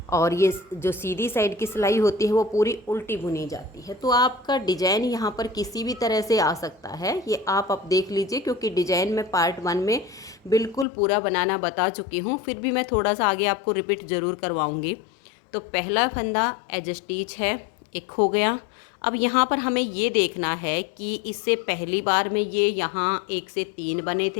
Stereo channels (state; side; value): drops out; right; at 10.9 s